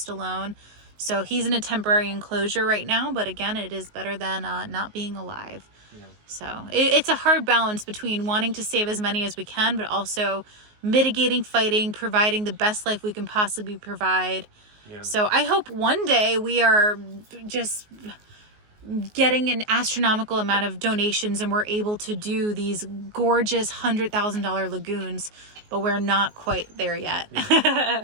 So he's in a temporary enclosure right now, but again, it is better than not being alive. Yeah. So it's a hard balance between wanting to save as many as we can, but also mitigating fighting, providing the best life we can possibly provide. Yeah. So I hope one day we are just getting an astronomical amount of donations and we're able to do these gorgeous $100,000 lagoons, but we're not quite there yet.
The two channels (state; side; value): late; left; 19 ms